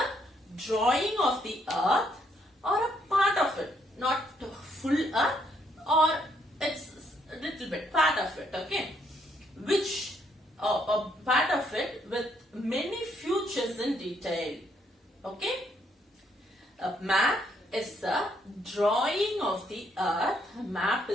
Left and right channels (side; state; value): both; normal; correlation 0.72